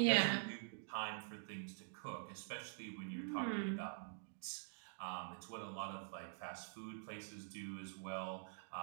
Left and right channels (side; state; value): left; silent; digital silence